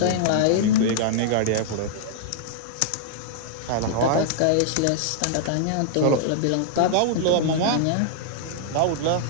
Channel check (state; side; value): different; both; correlation -0.01